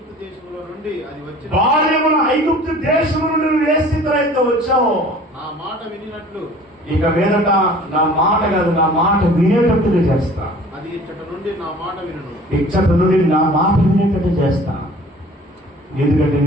దేశములో నుండి నువ్వు ఏ స్థితిలో అయితే వచ్చావో నా మాట వినినట్లు ఇక మీదట నా మాట కాదు, నా మాట వినేటట్టుగా చేస్తా. అది ఇచ్చట నుండి నా మాట వినేటట్టు చేస్తా. ఎందుకంటే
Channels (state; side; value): normal; both; correlation 0.47